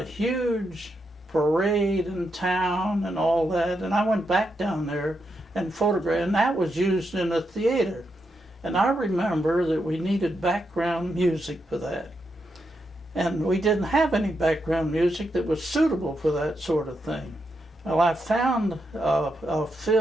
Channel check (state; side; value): normal; both; correlation 0.83